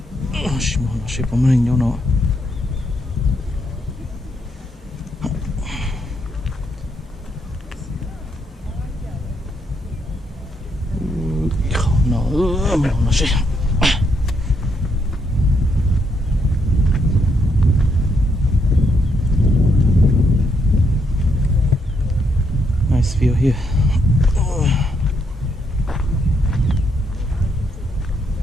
sẽ có mình nhau nó nó sẽ nice view here.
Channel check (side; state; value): both; normal; correlation 0.76